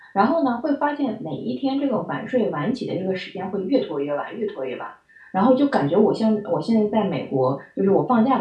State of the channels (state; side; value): identical; both; correlation 1.00